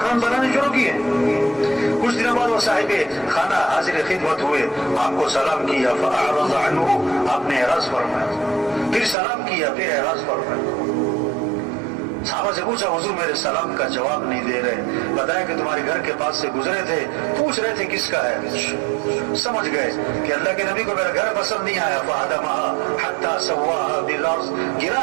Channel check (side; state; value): left; drops out; at 9.2 s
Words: बनाने शुरू किए। कुछ दिनों बाद वो साहिबे खाना हाजिर खिदमत हुए, आपको सलाम किया, फअअरज़ अन्हु, आपने एराज़ फरमाया, फिर सलाम किया, फिर एराज़ फरमाया। साहबा से पूछा, हुजूर मेरे सलाम का जवाब नहीं दे रहे। बताया कि तुम्हारे घर के पास से गुजरे थे, पूछ रहे थे किसका है। समझ गए कि अल्लाह के नबी को मेरा घर पसंद नहीं आया। फहदमहा हत्ता सव्वाहा बिल अर्ज़, गिरा